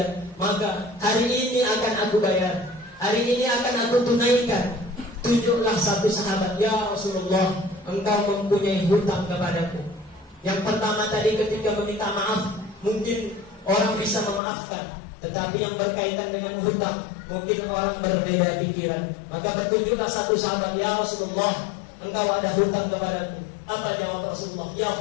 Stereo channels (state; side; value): drops out; right; at 14.4 s